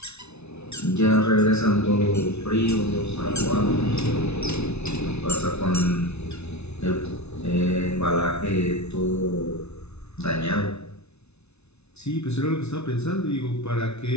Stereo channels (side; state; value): right; late; 0.81 ms